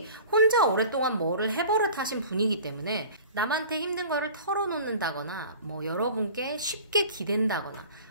혼자 오랫동안 뭐를 해버릇 하신 분이기 때문에 남한테 힘든 거를 털어놓는다거나 뭐 여러분께 쉽게 기댄다거나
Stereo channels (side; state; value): both; inverted; correlation -0.42